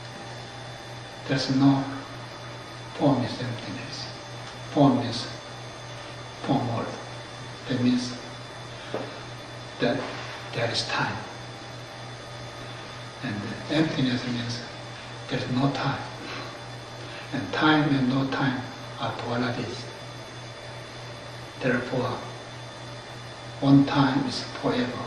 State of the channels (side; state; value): both; identical; correlation 1.00